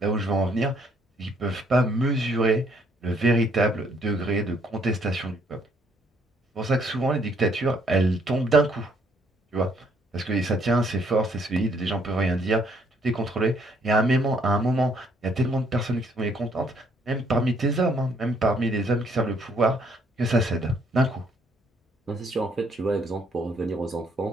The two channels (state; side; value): normal; both; correlation 0.67